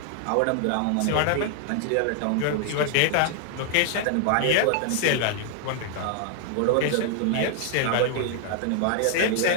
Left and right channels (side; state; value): both; different; correlation 0.00